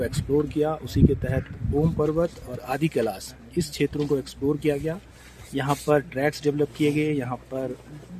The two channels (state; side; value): identical; both; correlation 1.00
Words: एक्सप्लोर किया। उसी के तहत ओम पर्वत और आदि कैलाश इस क्षेत्रों को एक्सप्लोर किया गया। यहाँ पर ट्रैक्स डेवलप किए गए, यहाँ पर